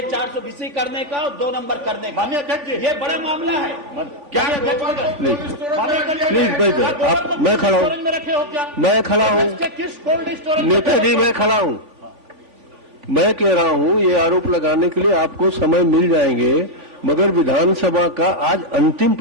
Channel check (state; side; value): late; left; 3.5 ms